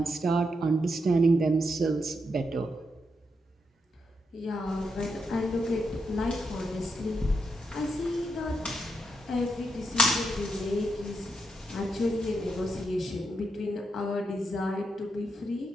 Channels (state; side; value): normal; both; correlation 0.82